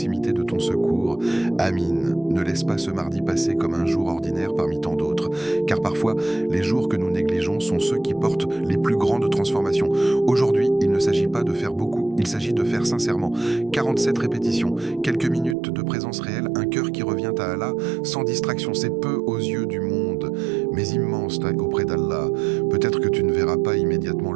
de ton secours. Amin. Ne laisse pas ce mardi passer comme un jour ordinaire parmi tant d'autres, car parfois, les jours que nous négligeons sont ceux qui portent les plus grandes transformations. Aujourd'hui, il ne s'agit pas de faire beaucoup, il s'agit de faire sincèrement. 47 répétitions, quelques minutes de présence réelle, un cœur qui revient à Allah, sans distraction, c'est peu aux yeux du monde, mais immense auprès d'Allah. Peut-être que tu ne verras pas immédiatement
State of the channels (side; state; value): left; drops out; at 15.6 s